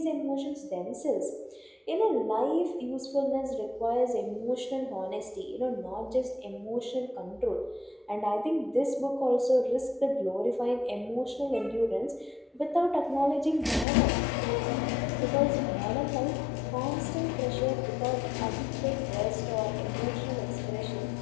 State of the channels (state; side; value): drops out; right; at 13.9 s